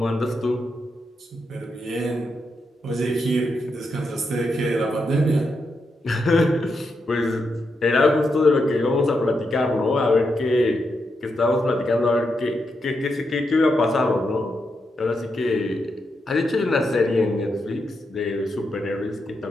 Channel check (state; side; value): normal; both; correlation 0.84